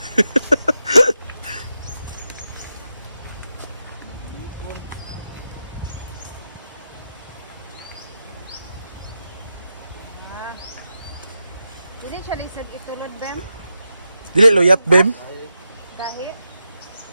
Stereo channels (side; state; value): both; inverted; correlation -0.88